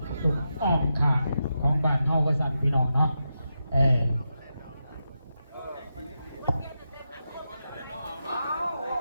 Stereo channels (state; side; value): inverted; both; correlation -0.88